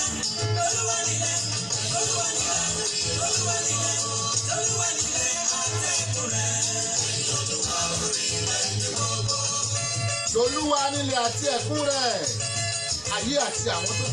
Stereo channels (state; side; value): identical; both; correlation 1.00